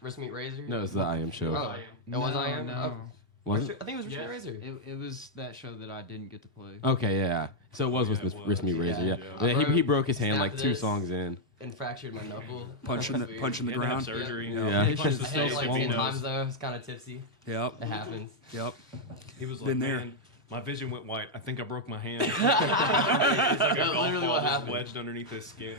Wrist Meet Razor? No, it's the I Am show. Oh, it was I Am? No. Was it? I think it was Wrist Meet Yes. Razor. It was that show that I didn't get to play. Okay, yeah. So it was with Yeah, it was. Wrist Me Razor, yeah. Yeah. Yeah, he broke his hand Snapped like 2 this. songs in. And fractured my knuckle. punching the That's weird. punching the Had to have ground. surgery. Yeah. It's Punched just the I stage hit it like if he 10 knows. times though. It's kind of tipsy. Yep, It happens. yep. He was like, Been there. man, my vision went white. I think I broke my hand. It's like a That's golf literally ball what just happened. wedged underneath his skin.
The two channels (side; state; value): both; normal; correlation -0.02